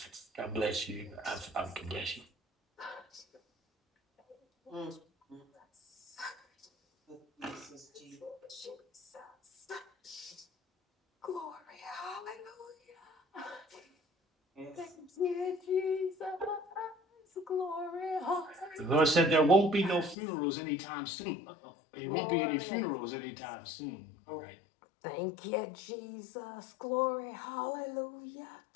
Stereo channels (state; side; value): drops out; right; at 20.2 s